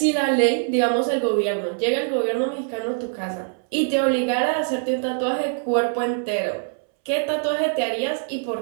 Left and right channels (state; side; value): silent; left; 63 dB below the other